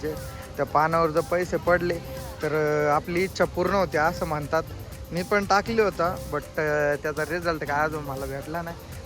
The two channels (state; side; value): identical; both; correlation 1.00